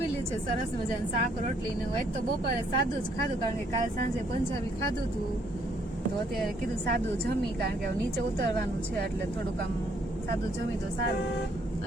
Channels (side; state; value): both; normal; correlation 0.68